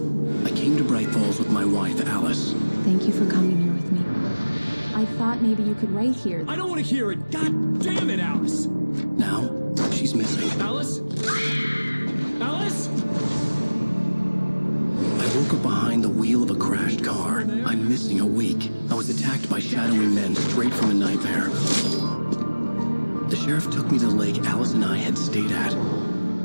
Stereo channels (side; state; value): both; inverted; correlation -1.00